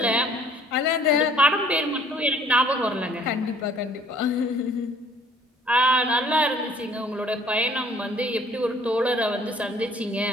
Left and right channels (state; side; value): normal; both; correlation 0.57